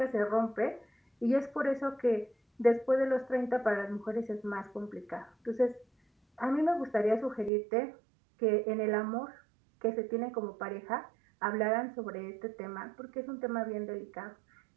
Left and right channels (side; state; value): left; drops out; at 7.5 s